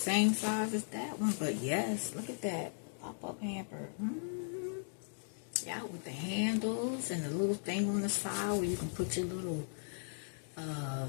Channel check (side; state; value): right; silent; digital silence